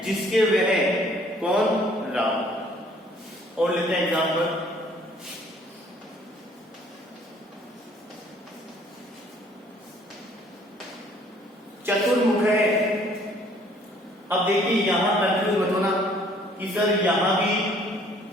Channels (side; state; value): both; normal; correlation 0.59